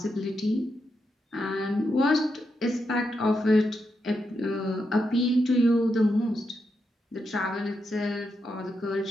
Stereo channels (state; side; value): normal; both; correlation 0.84